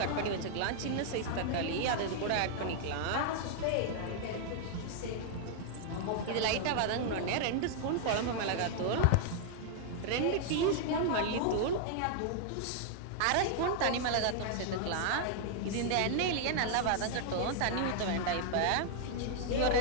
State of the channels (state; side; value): different; both; correlation -0.01